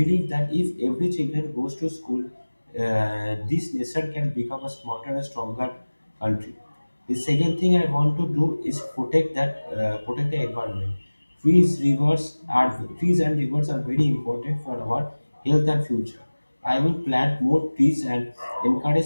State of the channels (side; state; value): both; inverted; correlation -1.00